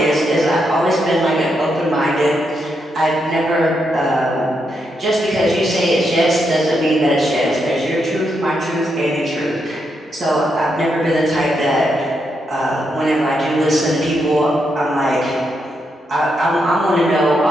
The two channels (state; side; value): normal; both; correlation 0.81